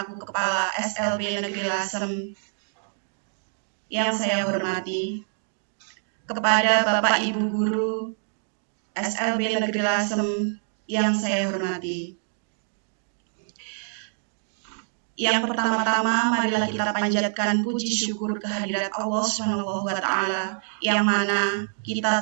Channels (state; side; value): silent; left; digital silence